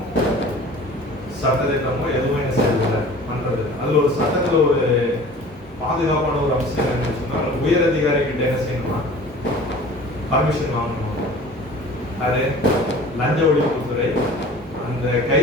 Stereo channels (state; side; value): normal; both; correlation 0.44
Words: சட்டத்திட்டமோ எதுவும் என்ன செய்யறதில்லை, பண்றது. அதுல ஒரு சட்டத்துல ஒரு பாதுகாப்பான ஒரு அம்சம் என்னன்னு சொன்னா, உயர் அதிகாரி கிட்ட என்ன செய்யணுமா, பர்மிஷன் வாங்கணும். அது லஞ்ச ஒழிப்புத்துறை அந்த